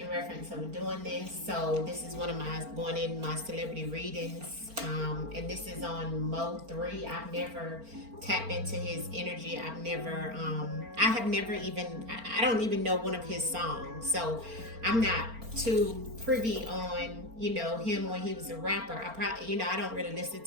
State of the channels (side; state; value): left; late; 4.4 ms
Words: reference of doing this. So this is one of my going in my celebrity readings. And this is on Mo3. I've never tapped into his energy. I have never even, I don't even know one of his songs. So I'm not too privy on him when he was a rapper. I probably I don't really listen